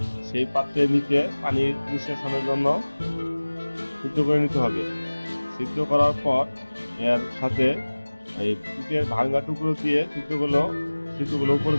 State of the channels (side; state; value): both; inverted; correlation -1.00